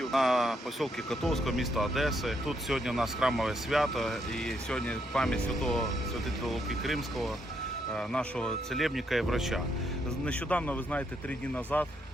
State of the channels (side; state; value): both; normal; correlation 0.76